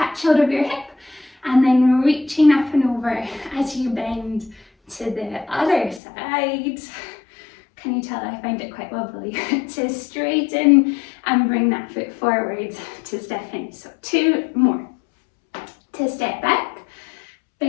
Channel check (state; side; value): drops out; right; at 6.0 s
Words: hold of your hip, and then reaching up and over as you bend to the other side. Can you tell I find it quite wobbly? To straighten and bring that foot forward to step in. So 2 more. To step back,